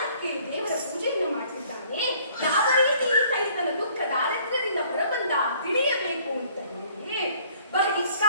ದೇವರ ಪೂಜೆಯನ್ನು ಮಾಡ್ತಿದ್ದಾನೆ. ಯಾವ ರೀತಿ ಈತ ಈತನ ದುಃಖ ದಾರಿದ್ರ್ಯದಿಂದ ಹೊರಬಂದ ತಿಳಿಯಬೇಕು ಅಂತ ಹೇಳಿ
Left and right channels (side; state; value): both; inverted; correlation -0.58